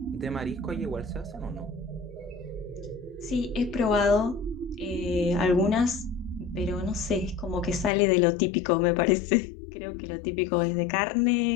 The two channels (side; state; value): right; drops out; at 7.9 s